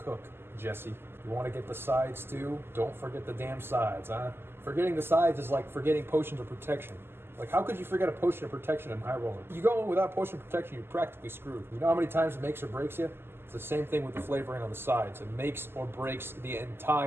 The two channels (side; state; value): left; late; 0.11 ms